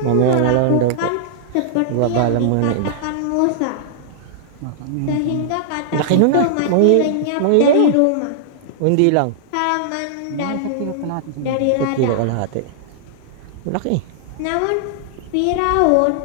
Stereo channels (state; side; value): different; both; correlation -0.01